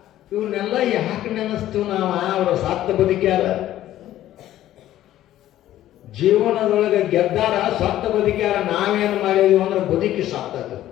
ಇವನ್ನೆಲ್ಲ ಯಾಕೆ ನೆನೆಸ್ತೀವಿ ನಾವು? ಅವರ ಸತ್ತ ಬದುಕ್ಯಾರ, ಜೀವನದೊಳಗೆ ಗೆದ್ದಾರ, ಸತ್ತ ಬದುಕ್ಯಾರ. ನಾವೇನು ಮಾಡಿದೀವಿ ಅಂದ್ರೆ ಬದುಕಿ ಸತ್ತದು.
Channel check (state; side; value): quieter; right; 13.3 dB